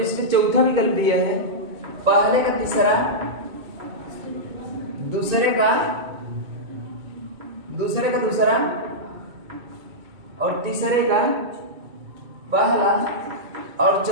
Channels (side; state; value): left; late; 2.4 ms